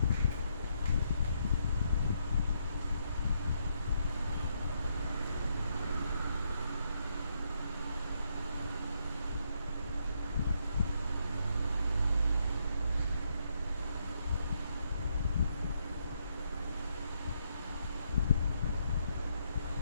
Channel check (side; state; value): both; inverted; correlation -0.77